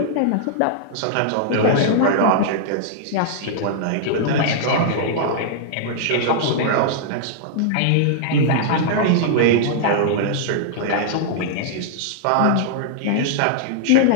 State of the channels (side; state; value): both; different; correlation -0.01